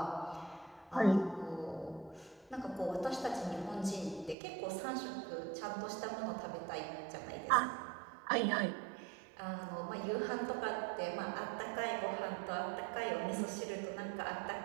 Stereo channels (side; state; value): left; drops out; at 4.4 s